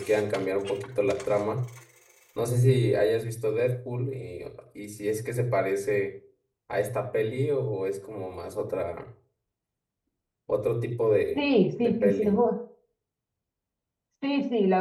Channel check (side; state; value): both; identical; correlation 1.00